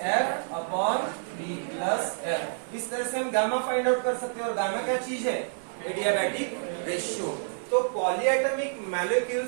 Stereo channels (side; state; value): left; silent; 59 dB below the other